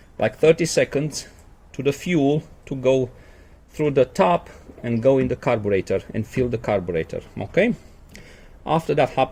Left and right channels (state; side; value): identical; both; correlation 1.00